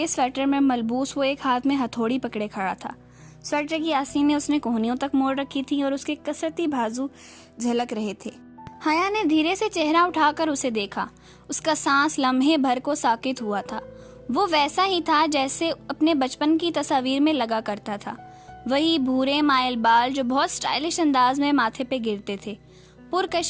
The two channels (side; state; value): both; identical; correlation 1.00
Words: स्वेटर में मलबूस वो एक हाथ में हथौड़ी पकड़े खड़ा था। स्वेटर की आस्तीनें उसने कोहनियों तक मोड़ रखी थी और उसके कसरती बाजू झलक रहे थे। हया ने धीरे से चेहरा उठाकर उसे देखा। उसका सांस लम्हे भर को साकित हुआ था। वो वैसा ही था जैसे अपने बचपन की तस्वीर में लगा करता था। वही भूरे माइल बाल जो बहुत स्टाइलिश अंदाज में माथे पे गिरते थे,